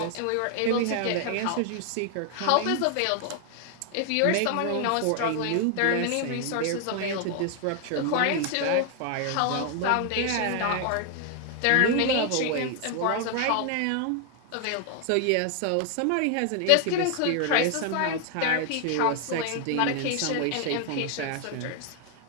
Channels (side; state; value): both; different; correlation 0.00